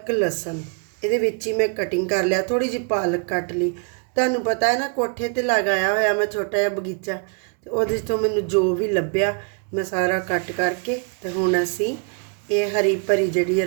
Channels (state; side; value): quieter; left; 36.2 dB